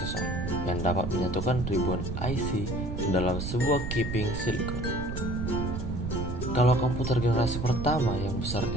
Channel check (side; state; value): right; noise; rumble, 4 dB below the sound